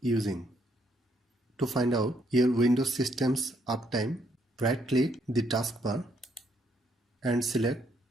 using. To find out your Windows system's uptime, right click the taskbar and select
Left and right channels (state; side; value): normal; both; correlation 0.72